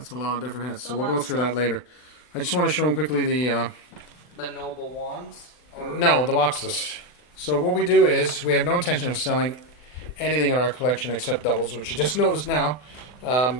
a lot of different heads. a So we'll lot go of through stuff. that later. I just want to show them quickly the... The noble wands. No, the boxes. So what we do is, we have no intention of selling anything in our collection except doubles, which you just noticed now.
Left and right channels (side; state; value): right; late; 40 ms